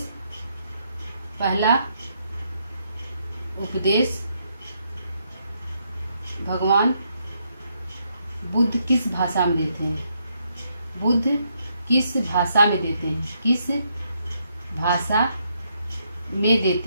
भगवान बुद्ध किस भाषा में देते हैं? बुद्ध किस भाषा में देते हैं? किस भाषा में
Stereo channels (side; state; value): both; inverted; correlation -0.76